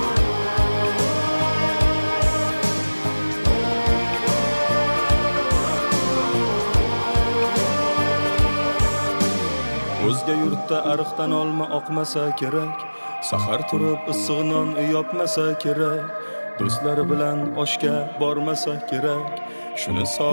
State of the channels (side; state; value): both; inverted; correlation -1.00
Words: O'zga yurtda ariqdan olma oqmasa kerak, sahar turib issiq non yopmasa kerak, do'stlari bilan oshga bormasa kerak. Shuni